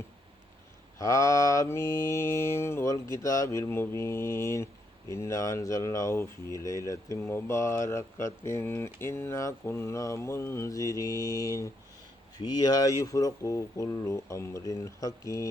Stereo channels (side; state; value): both; normal; correlation 0.77